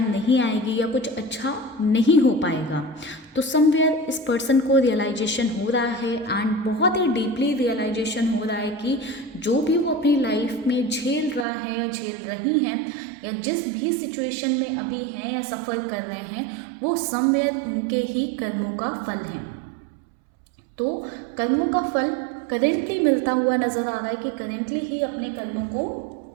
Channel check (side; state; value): left; drops out; at 11.5 s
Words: आएगी या कुछ अच्छा नहीं हो पाएगा। तो समवेयर इस पर्सन को रियलाइजेशन हो रहा है, एंड बहुत ही डीपली रियलाइजेशन हो रहा है कि जो भी वो अपनी लाइफ में झेल रहा है या झेल रही हैं, या जिस भी सिचुएशन में अभी हैं या सफ़र कर रहे हैं, वो समवेयर उनके ही कर्मों का फल है। तो कर्मों का फल करेंटली मिलता हुआ नज़र आ रहा है कि करेंटली ही अपने कर्मों को